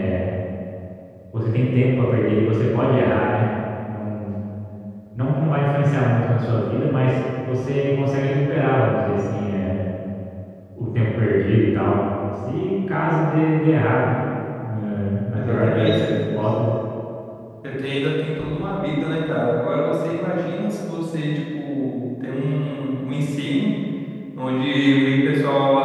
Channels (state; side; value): identical; both; correlation 1.00